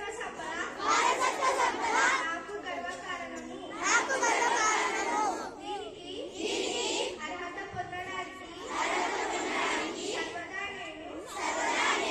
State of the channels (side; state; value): both; identical; correlation 1.00